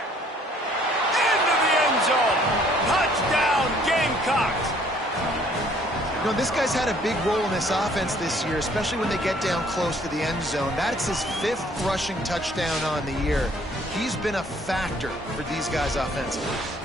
Into the end zone. Touchdown, Gamecocks. You know, this guy's had a big role in this offense this year, especially when they get down close to the end zone. That's his 5th rushing touchdown on the year. He's been a factor for these guys offensively.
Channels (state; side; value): normal; both; correlation 0.60